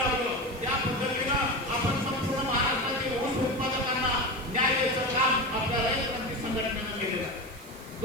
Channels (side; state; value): right; noise; hiss, 20 dB below the sound